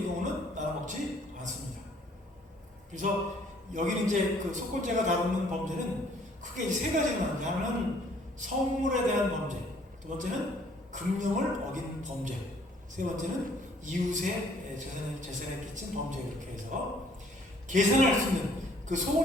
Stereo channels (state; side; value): normal; both; correlation 0.60